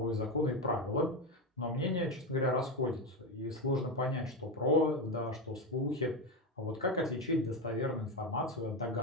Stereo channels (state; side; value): normal; both; correlation 0.14